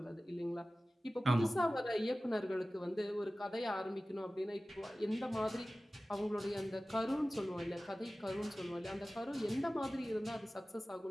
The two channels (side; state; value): both; normal; correlation 0.96